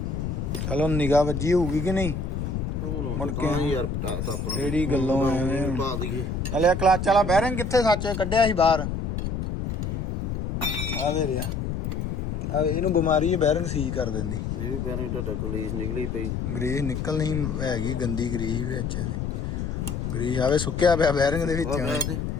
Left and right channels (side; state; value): left; noise; rumble, 3 dB below the sound